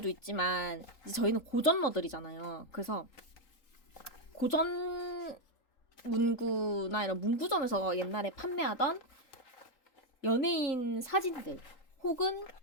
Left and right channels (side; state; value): right; late; 3.8 ms